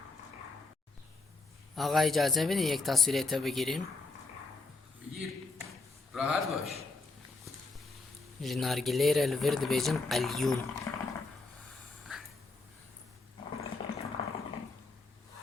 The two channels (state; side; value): quieter; right; 3.6 dB